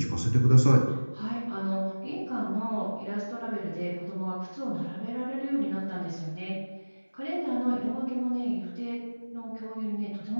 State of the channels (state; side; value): inverted; both; correlation -1.00